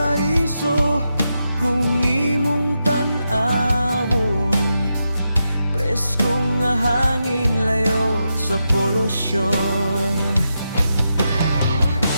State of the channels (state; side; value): inverted; both; correlation -0.86